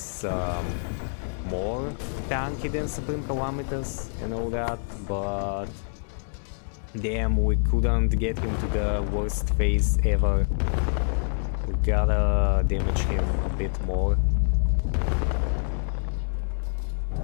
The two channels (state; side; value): silent; right; 61 dB below the other